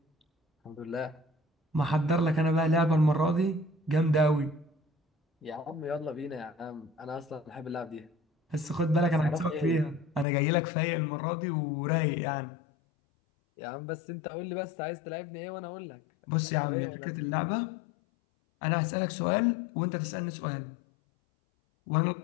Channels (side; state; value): right; drops out; at 10.2 s